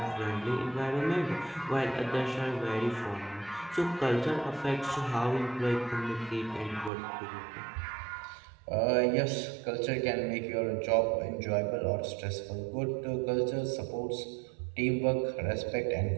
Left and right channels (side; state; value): left; drops out; at 6.9 s